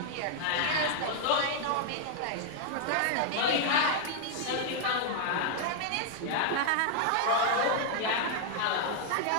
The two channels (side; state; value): both; different; correlation -0.01